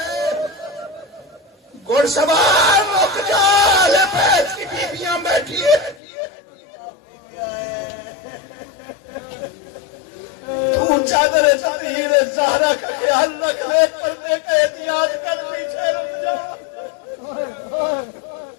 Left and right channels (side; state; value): right; drops out; at 6.0 s